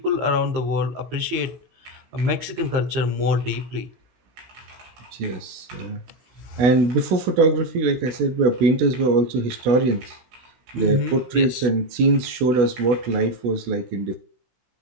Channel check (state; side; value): late; left; 16 ms